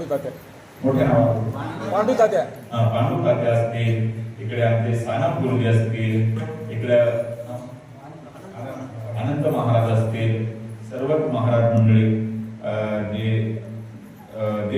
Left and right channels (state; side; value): identical; both; correlation 1.00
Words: मोठ्या नाव पांडू तात्या पांडू तात्या असतील, इकडे आमचे सानप गुरुजी असतील, इकडे अनंत महाराज असतील, सर्वच महाराज मंडळी जे